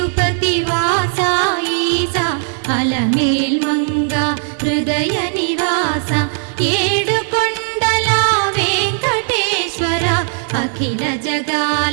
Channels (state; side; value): silent; left; 56 dB below the other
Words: వాస ఈసా అలమేల్ మంగ హృదయ నివాస ఏడు కొండల వెంకటేశ్వర అఖిల